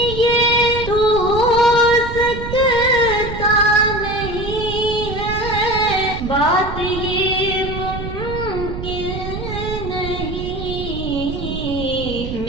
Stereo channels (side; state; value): right; noise; rumble, 7 dB below the sound